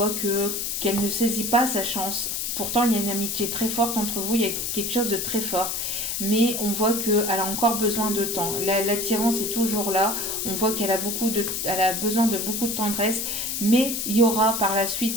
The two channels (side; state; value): left; noise; hiss, 2 dB below the sound